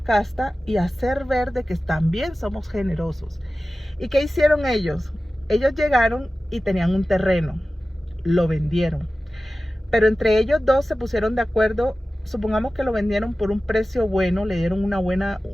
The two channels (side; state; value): both; normal; correlation 0.95